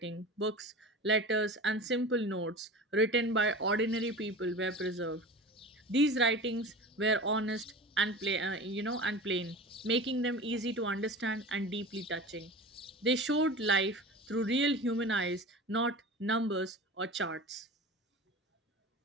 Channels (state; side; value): normal; both; correlation 0.34